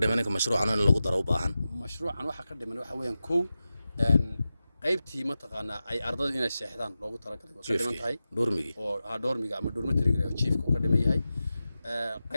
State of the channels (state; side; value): inverted; both; correlation -0.93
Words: dhiman in mashruucan in lagu daro u baahan mashruucan waxa ka dhiman waxa weeyaan qaybtii mataqaana ay ardaydu inay seexdaan loogu talagalay oo ka dhiman tahay doormigi oo doormiga ama dormitoryga chiefka uu ka dhiman yahay